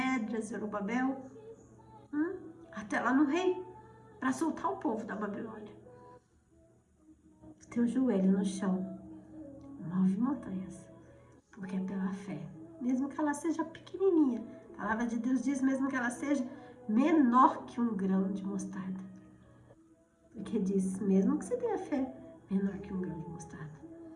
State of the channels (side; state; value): both; identical; correlation 1.00